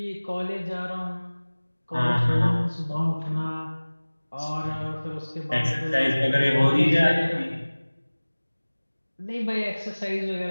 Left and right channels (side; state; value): both; inverted; correlation -1.00